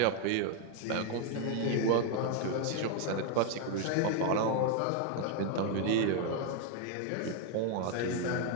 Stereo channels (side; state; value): both; different; correlation 0.01